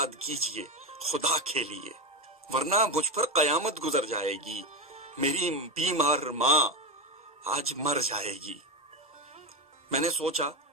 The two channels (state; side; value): normal; both; correlation 0.13